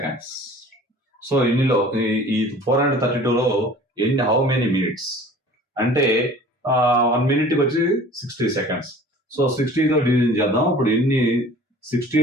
సో ఇన్నిలో ఈ 432లో హౌ మెనీ మినిట్స్ అంటే 1 minute వచ్చి 60 seconds. సో 60తో డివిజన్ చేద్దాం. ఇప్పుడు ఎన్ని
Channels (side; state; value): both; normal; correlation 0.46